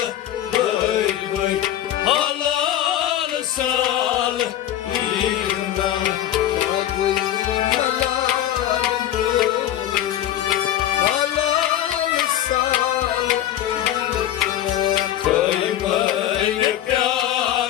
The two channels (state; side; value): quieter; right; 12.2 dB